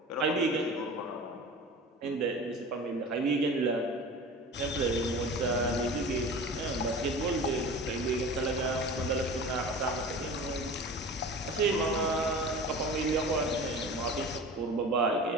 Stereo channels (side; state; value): both; normal; correlation 0.36